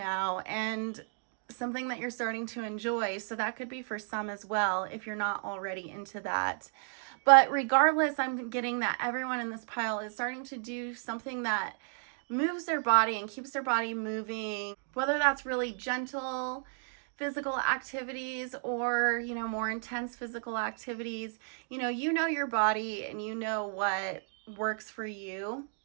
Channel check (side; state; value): left; silent; 56 dB below the other